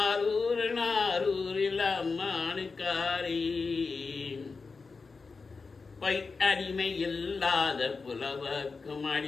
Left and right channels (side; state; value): right; quieter; 4.5 dB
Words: அம்மானுக்காரி பை அடிமை இல்லாத புலவர்க்கும்